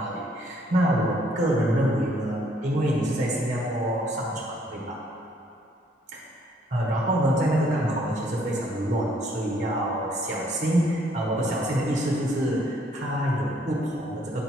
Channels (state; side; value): normal; both; correlation 0.66